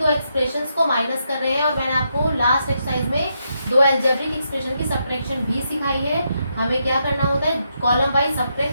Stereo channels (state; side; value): inverted; both; correlation -0.80